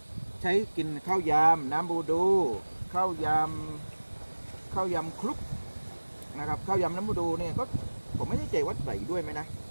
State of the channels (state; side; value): inverted; both; correlation -1.00